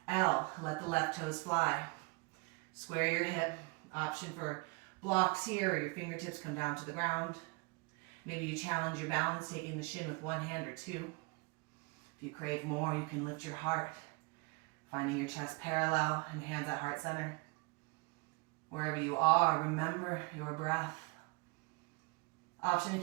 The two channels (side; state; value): left; quieter; 27.7 dB